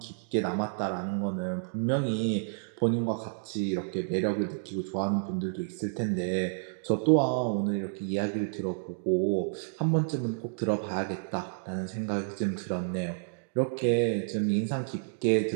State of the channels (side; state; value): left; silent; digital silence